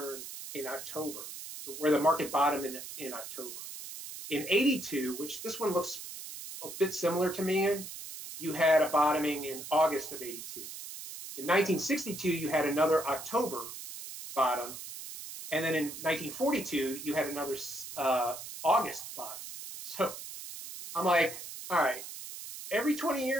in October, where the market bottomed in October. In 82, which this one looks a bit similar to me in, you had a bottoming in August of 82. In 1962, you had another October bottom. And then in 1942, you had another August bottom. So I'm like, all right, every 20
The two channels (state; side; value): noise; right; hiss, 10 dB below the sound